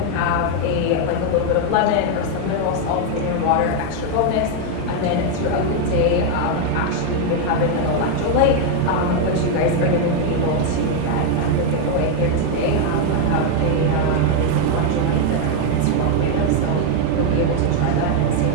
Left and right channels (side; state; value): both; different; correlation 0.01